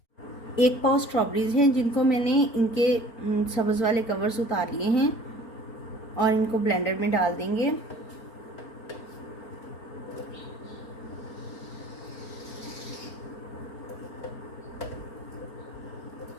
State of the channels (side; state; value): right; late; 4.4 ms